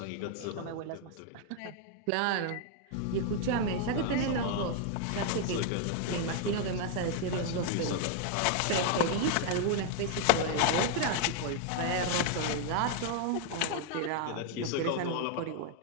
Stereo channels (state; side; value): different; both; correlation 0.00